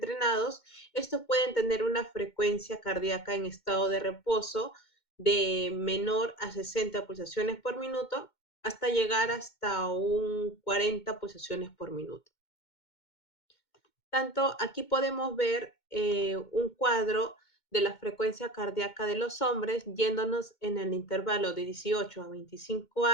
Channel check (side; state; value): right; late; 2.2 ms